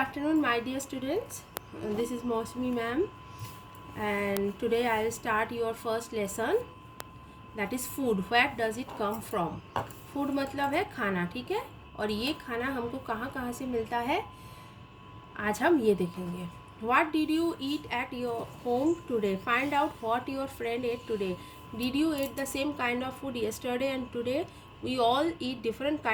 my dear students. This is Mosmi ma'am, and today I will start your first lesson. That is food. Where does it come from? Food मतलब है खाना, ठीक है। और ये खाना हमको कहाँ कहाँ से मिलता है, आज हम ये देखेंगे. What did you eat at your home today? Find out what your friend ate today. Did you eat the same kind of food yesterday and today? We all eat different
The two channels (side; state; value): both; identical; correlation 1.00